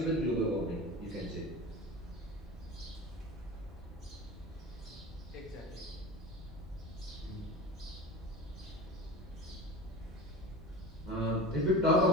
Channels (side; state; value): both; normal; correlation 0.32